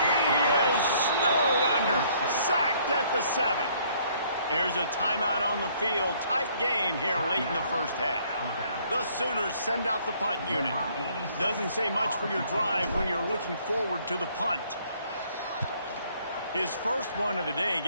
he is snowed under. Sacked at the 7. There's a timeout on the field. Tight game here late in the first half. The Sooners send out the punt unit. Doesn't say much for your drive when you're looking forward to the punt. His first one of the day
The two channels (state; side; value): inverted; both; correlation -0.63